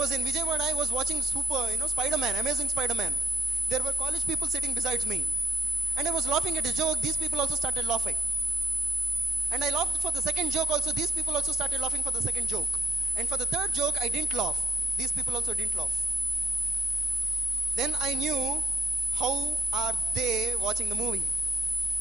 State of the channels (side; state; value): both; normal; correlation 0.76